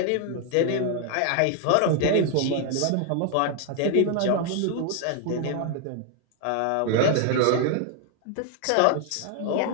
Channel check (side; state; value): both; different; correlation 0.00